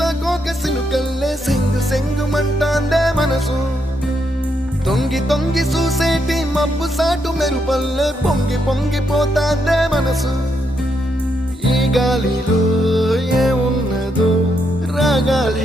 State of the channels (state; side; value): normal; both; correlation 0.78